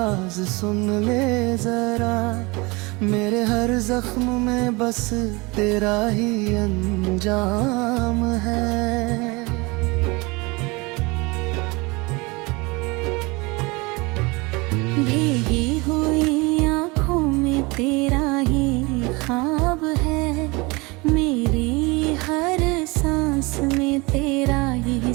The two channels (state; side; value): quieter; left; 25.7 dB